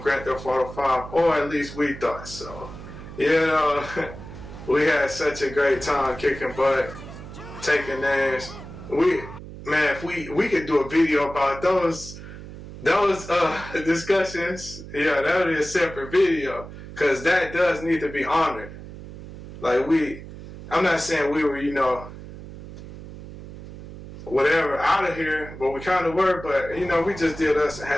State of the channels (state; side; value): noise; right; hum, 13 dB below the sound